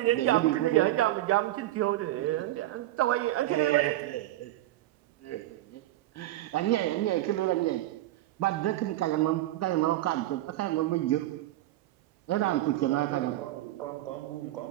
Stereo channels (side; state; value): left; quieter; 15.4 dB